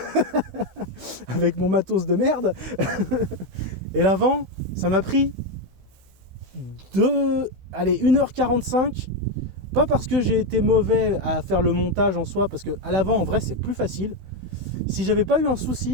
avec mon matos de merde. Et l'avant ça m'a pris 1h45, pas parce que j'ai été mauvais à faire le montage en soi, parce que à l'avant en vrai c'est plus facile. Si j'avais pas eu un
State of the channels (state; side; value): late; left; 16 ms